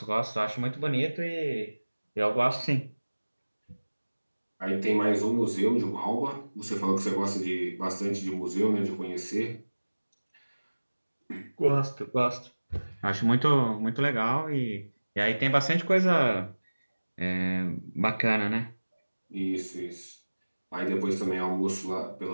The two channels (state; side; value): inverted; both; correlation -1.00